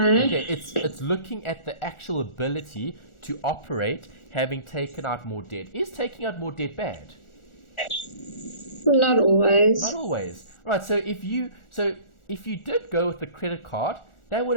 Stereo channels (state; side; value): late; right; 1.4 ms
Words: Okay, it's looking at the actual ability to operate having taken out more debt. Is taking out more debt bad? Not always. Not always. Right, so if you did go with the credit card, that would